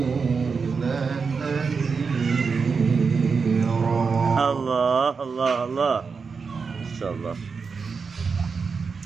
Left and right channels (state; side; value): quieter; left; 5.2 dB